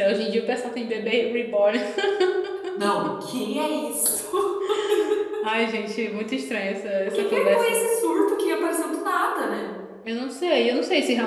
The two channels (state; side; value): identical; both; correlation 1.00